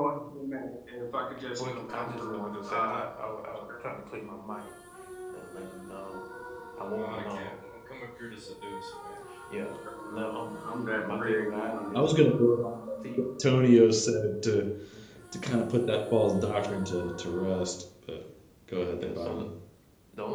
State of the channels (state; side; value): identical; both; correlation 1.00